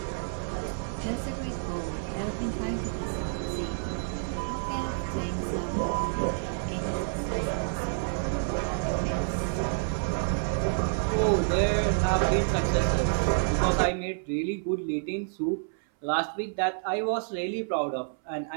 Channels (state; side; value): silent; left; 58 dB below the other